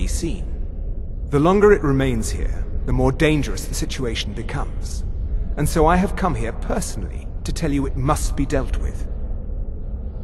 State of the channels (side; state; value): both; identical; correlation 1.00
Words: seen. The longer it remains here, the more dangerous the situation becomes. And so I have come here personally to tell you it must be dealt with.